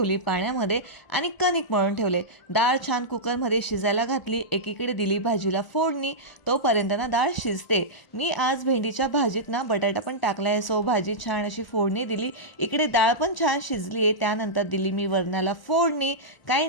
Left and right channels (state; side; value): late; right; 1.0 ms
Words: पाण्यामध्ये आणि कणिक मळून ठेवले। डाळ छान कुकरमध्ये शिजायला घातली। एकीकडे दिली भाजीला फोडणी, तोपर्यंत ना डाळ शिजते। मी आज भेंडीच्या भाजीत ना बटाटा पण टाकलाय, सो भाजी छान अशी फोडणी दिली। इकडे डाळ पण छान शिजली आहे। त्यानंतर दिली मी वरणाला फोडणी। काही